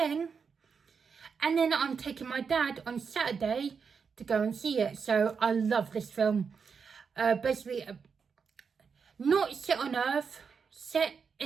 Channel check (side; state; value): left; quieter; 5.9 dB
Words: And then I'm taking my dad on Saturday to go and see it. So I love this film. Basically, not set on Earth, set